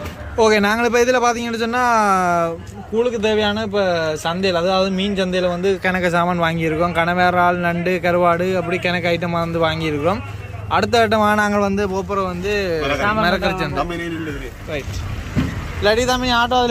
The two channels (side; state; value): both; identical; correlation 1.00